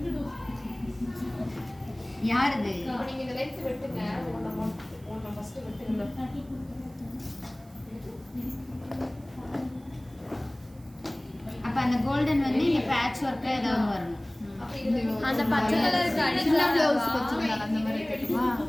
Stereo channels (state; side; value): noise; right; hiss, 28 dB below the sound